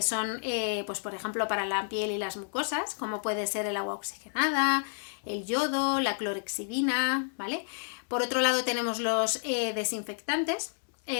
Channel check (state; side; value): silent; right; digital silence